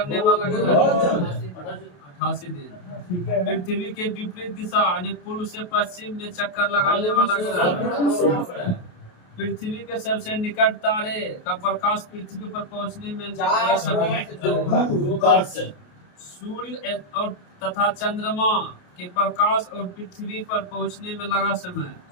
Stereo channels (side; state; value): right; late; 28 ms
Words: वाला ग्रह? 88 दिन। पृथ्वी के विपरीत दिशा यानी पूर्व से पश्चिम में चक्कर लगाने वाला ग्रह? पृथ्वी के सबसे निकट तारे का प्रकाश पृथ्वी पर पहुंचने में सूर्य और तथा चंद्रमा के प्रकाश और पृथ्वी पर पहुंचने में लगा समय?